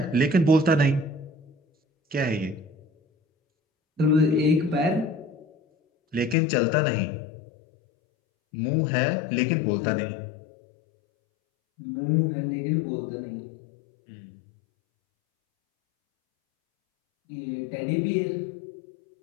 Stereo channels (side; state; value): right; drops out; at 6.4 s